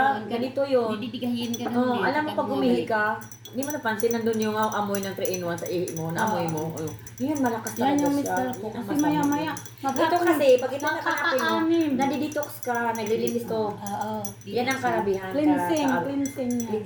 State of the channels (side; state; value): both; identical; correlation 1.00